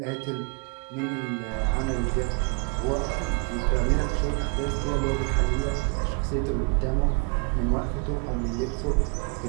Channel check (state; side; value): quieter; left; 33.5 dB